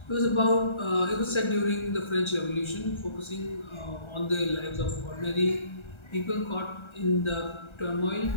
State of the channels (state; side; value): late; right; 1.3 ms